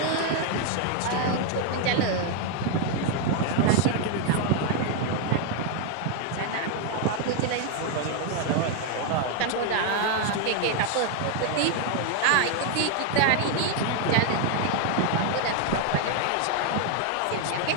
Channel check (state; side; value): different; both; correlation 0.00